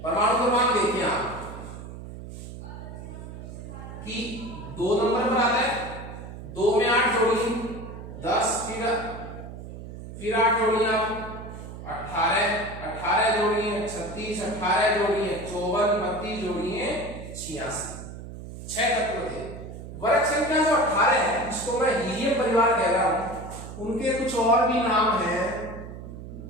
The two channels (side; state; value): right; noise; hum, 11 dB below the sound